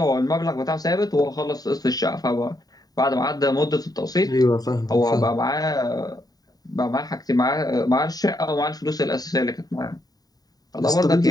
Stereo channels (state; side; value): late; right; 0.18 ms